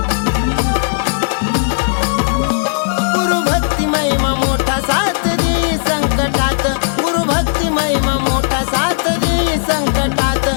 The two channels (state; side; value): silent; right; digital silence